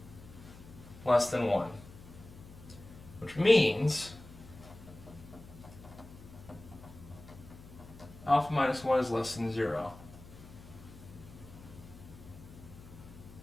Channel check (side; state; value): left; noise; hum, 18 dB below the sound